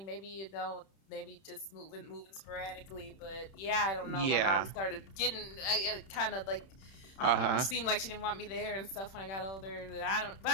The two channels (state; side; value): late; right; 31 ms